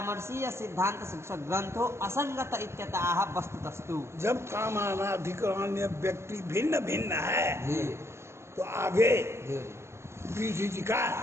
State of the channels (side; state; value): left; late; 0.13 ms